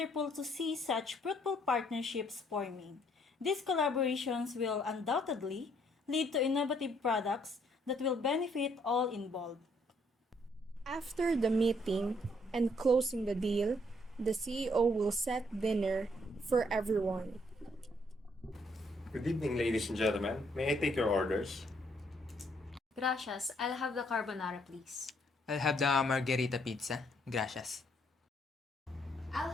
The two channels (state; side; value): normal; both; correlation 0.68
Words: to see such fruitful partnerships forming. These collaborations will undoubtedly lead to innovative products that will benefit all involved. After the meeting and closing the deal, the CEO will set dinner for everyone. Good evening, ladies and gentlemen. May I take your orders? Gracias. I'll have the carbonara, please. I'll have the margherita pizza. Gracias. I'll